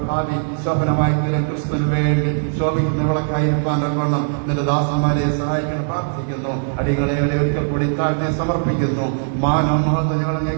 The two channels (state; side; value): silent; left; digital silence